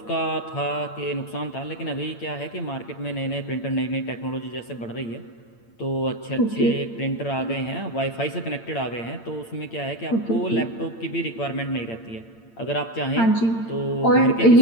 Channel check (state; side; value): late; right; 8.8 ms